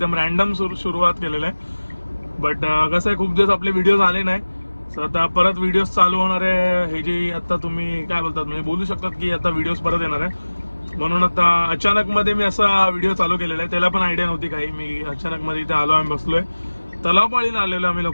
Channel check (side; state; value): both; inverted; correlation -1.00